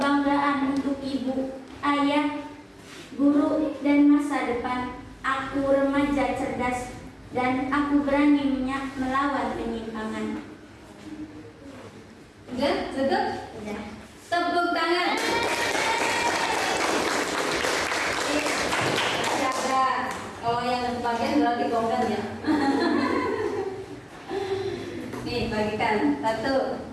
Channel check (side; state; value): both; identical; correlation 1.00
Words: untuk ibu, ayah, guru, dan masa depan. Aku remaja cerdas dan aku berani melawan penyimpangan. Udah, cukup? Udah. Tepuk tangan. Jaga. Kalau yang bagian berarti kongkan ya. Nih, bagikan. 1.